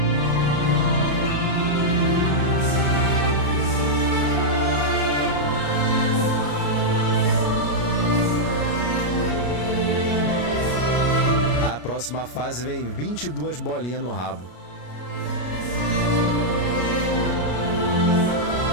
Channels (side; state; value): right; late; 33 ms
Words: A próxima fase vem 22 bolinhas no rabo.